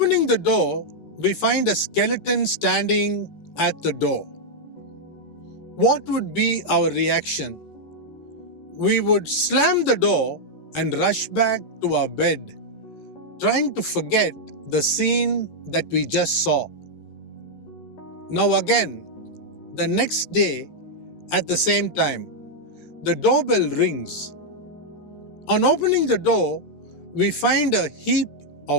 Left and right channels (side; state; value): right; late; 14 ms